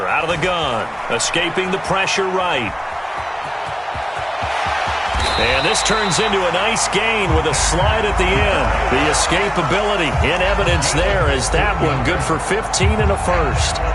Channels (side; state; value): both; identical; correlation 1.00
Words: out of the gun. Escaping the pressure right. And this turns into a nice gain with a slide at the end. The escapability in evidence there as that one good for 15 and a 1st.